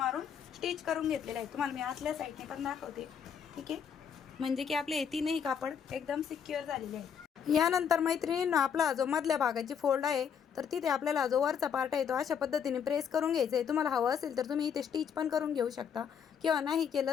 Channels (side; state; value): right; quieter; 7.5 dB